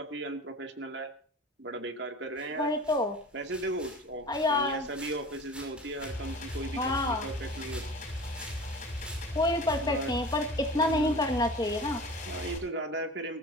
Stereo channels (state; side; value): normal; both; correlation 0.38